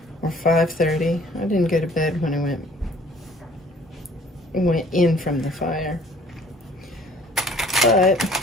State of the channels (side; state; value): both; normal; correlation 0.54